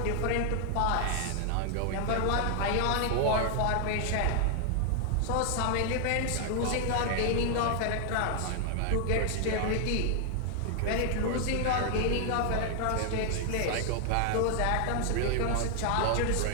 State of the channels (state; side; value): different; both; correlation 0.00